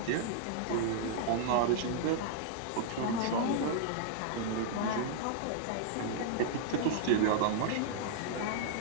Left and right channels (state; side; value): different; both; correlation -0.01